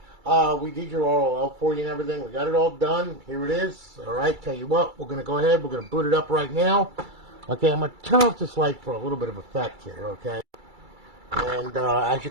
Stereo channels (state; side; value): late; left; 2.3 ms